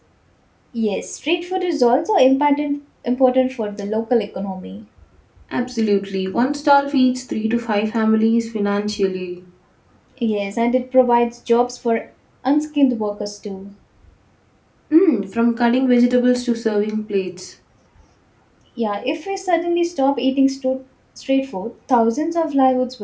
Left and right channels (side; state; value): both; identical; correlation 1.00